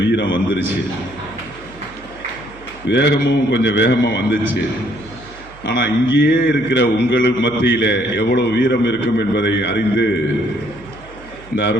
வீரம் வந்துருச்சு, வேகமும் கொஞ்சம் வேகமாக வந்துச்சு. ஆனால் இங்கேயே இருக்கிற உங்களுக்கு மத்தியில் எவ்வளோ வீரம் இருக்கும் என்பதை அறிந்து இந்த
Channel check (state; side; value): noise; right; hum, 21 dB below the sound